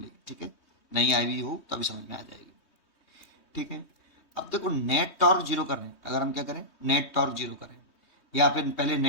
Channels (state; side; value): late; right; 3.2 ms